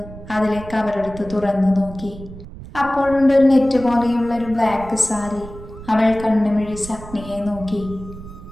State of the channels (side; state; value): right; noise; rumble, 15 dB below the sound